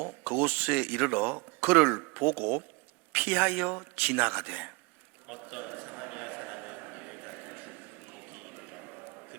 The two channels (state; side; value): quieter; left; 27.6 dB